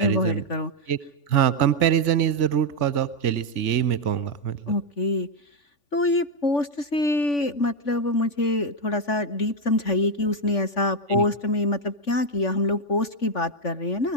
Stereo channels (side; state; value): right; late; 3.5 ms